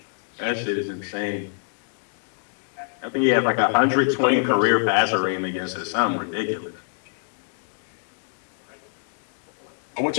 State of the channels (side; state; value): right; silent; digital silence